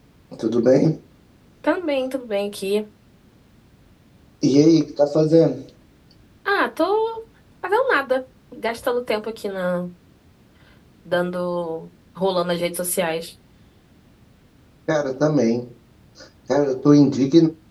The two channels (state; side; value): identical; both; correlation 1.00